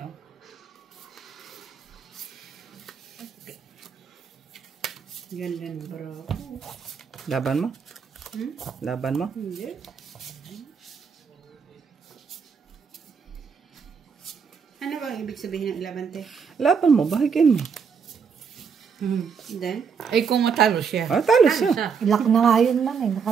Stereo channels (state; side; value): quieter; left; 6.3 dB